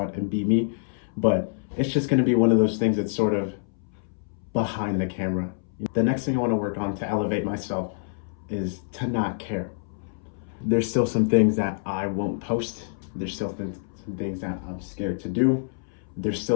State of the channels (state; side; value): silent; right; 61 dB below the other